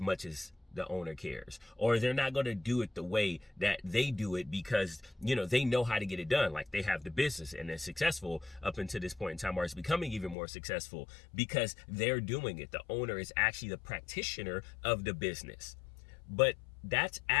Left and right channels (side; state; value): right; drops out; at 10.4 s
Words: as the owner cares, or they're not going to do it the way that they do it because they know how to get it done. Like, they have the business and they're successful up until this point in time, or it's becoming even more successful because they're doing it. The owner is actually the practitioner of the business. But that's